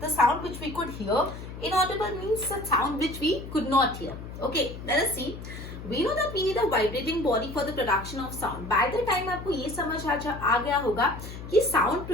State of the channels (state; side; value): noise; left; hum, 11 dB below the sound